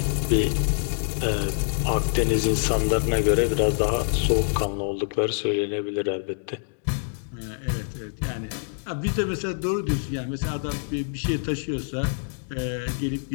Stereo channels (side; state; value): right; silent; digital silence